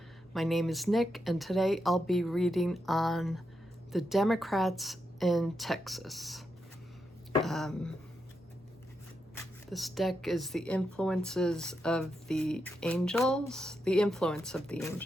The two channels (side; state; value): both; normal; correlation 0.84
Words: My name is Nick, and today I'll be reading on the Democrats in Texas. This deck is the influences of the angels, the influence of the